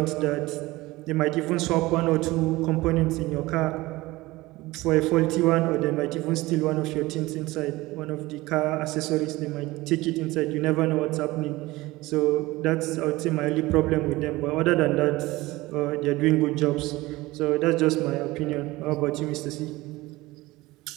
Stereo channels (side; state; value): left; quieter; 19.8 dB